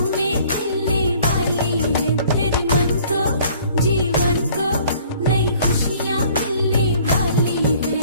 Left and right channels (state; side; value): inverted; both; correlation -0.55